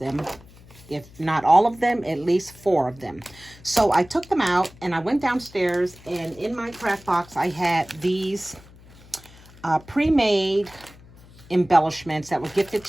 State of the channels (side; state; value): left; noise; hum, 23 dB below the sound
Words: If not all of them, at least 4 of them. So I took them out and I went downstairs, and in my craft box I had these pre-made embellishments that were gifted